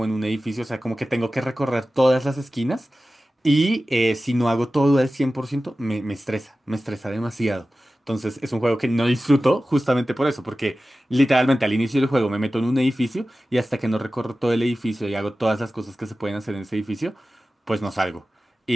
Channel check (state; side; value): normal; both; correlation 0.95